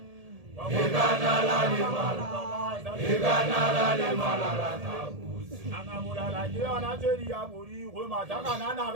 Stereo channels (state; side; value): late; left; 1.7 ms